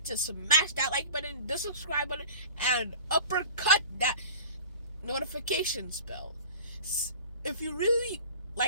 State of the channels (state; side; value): inverted; both; correlation -0.40